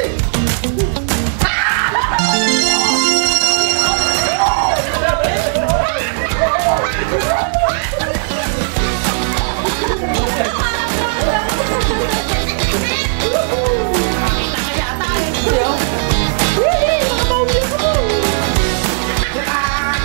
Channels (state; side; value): silent; left; digital silence